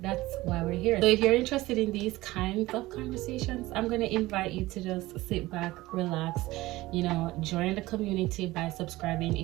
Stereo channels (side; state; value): left; quieter; 18.5 dB